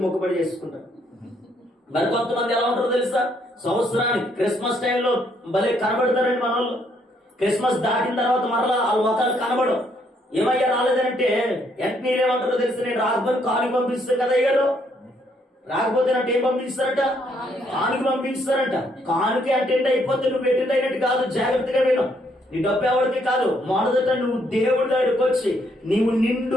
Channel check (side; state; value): both; normal; correlation 0.71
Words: మొక్కుబడి చేసుకుంటారు. మరి కొంతమంది ఎలా ఉంటారో తెలుసా? సంవత్సరానికి క్రిస్మస్ టైంలో భలే కనబడతారండి మన వాళ్ళు. క్రిస్మస్ దాటిన తర్వాత మరలా వాళ్ళ మొక్కలు కనబడవు. ఏమయ్యా రాలేదంటే వెంటనే ఏమంటారో తెలుసు, నేను రాకపోతే కానుక పంపిస్తాను కదా అయ్యారు. రాకపోతే అంటే ఏం పంపిస్తారట? కానుక పంపిస్తారంట. కానుక అటెండ్ అయిపోతే నువ్వు అటెండ్ అయినట్టు కాదు. జాగ్రత్తగా విను. నీ డబ్బు ఎవరికి కాదు. మొదట నువ్వు దేవుడి దగ్గరికి వచ్చి నీవు నిండు